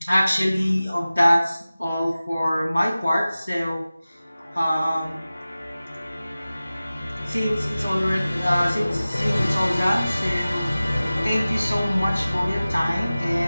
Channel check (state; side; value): inverted; both; correlation -0.97